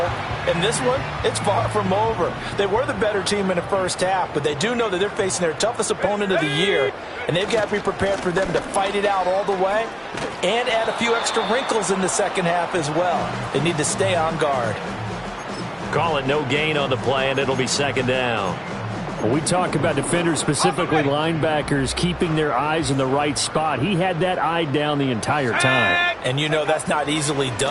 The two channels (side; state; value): both; identical; correlation 1.00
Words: And this one, it's far from over. They were the better team in the first half, but they do know that they're facing their toughest opponent of the year, and they've got to be prepared for them to fight it out all the way and add a few extra wrinkles in the second half as well. They need to stay on guard. Call it no gain on the play, and it'll be 2nd down. When we talk about defenders, specifically linebackers, keeping their eyes in the right spot, he had that eye down the entire time. And you know that's not easily